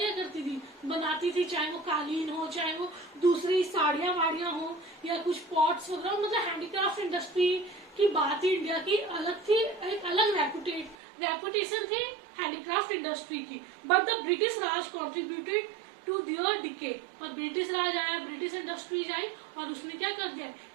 करती थी? बनाती थी, चाहे वो कालीन हो, चाहे वो दूसरी साड़ियां वाड़ियां हो या कुछ पॉट्स वगैरह. मतलब हैंडीक्राफ्ट इंडस्ट्री की बात ही इंडिया की अलग थी, एक अलग रेपुटेशन थी हैंडीक्राफ्ट इंडस्ट्री की. But the British Raj contributed to their decay. और ब्रिटिश राज आया, ब्रिटिश इंडस्ट्रीज आई और उसने क्या कर दिया?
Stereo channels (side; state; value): left; drops out; at 11.0 s